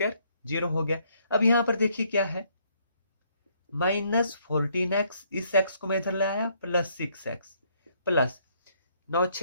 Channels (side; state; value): both; inverted; correlation -0.68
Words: zero हो गया। अब यहां पर देखिए क्या है, माइनस 14x, इस x को मैं इधर ले आया, प्लस 6x प्लस 9